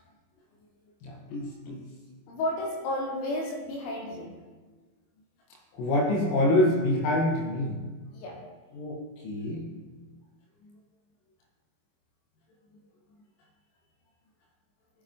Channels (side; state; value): right; late; 25 ms